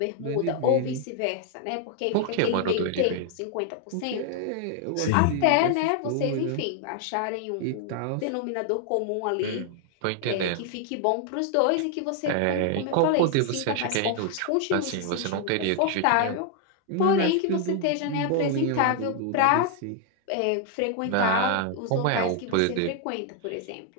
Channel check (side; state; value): both; different; correlation 0.00